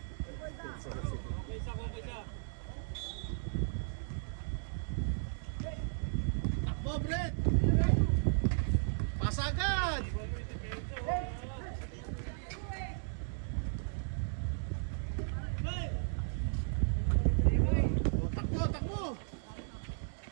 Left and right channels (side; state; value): left; silent; digital silence